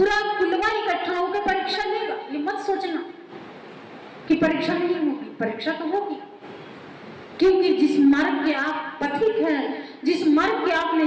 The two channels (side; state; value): both; identical; correlation 1.00